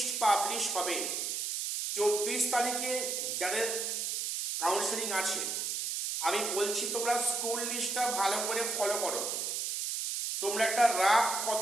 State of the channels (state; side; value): noise; right; hiss, 2 dB below the sound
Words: পাবলিশ হবে, 24 তারিখে যাদের কাউন্সেলিং আছে আমি বলছি তোমরা স্কুল লিস্টটা ভালো করে ফলো করো, তোমরা একটা রাফ